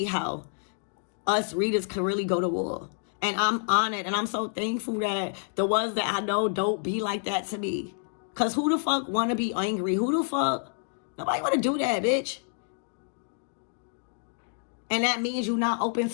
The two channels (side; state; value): right; silent; 59 dB below the other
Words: how us readers can really go to war. And I'm honored, and I'm so thankful that the ones that I know don't be like that to me. Because who the fuck want to be angry? Who the fuck? Nobody want to do that, bitch. And that means you're not open